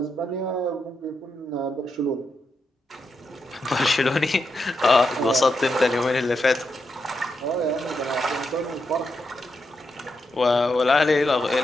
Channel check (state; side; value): normal; both; correlation 0.84